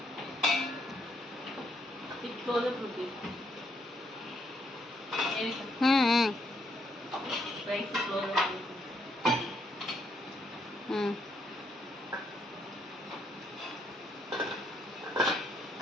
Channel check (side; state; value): both; normal; correlation 0.73